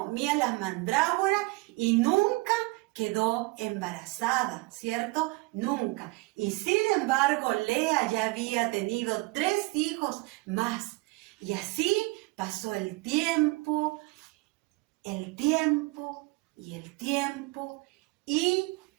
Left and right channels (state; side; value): quieter; left; 24.6 dB